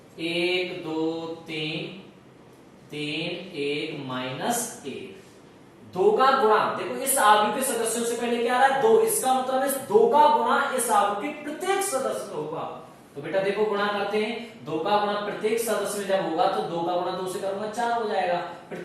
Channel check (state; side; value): identical; both; correlation 1.00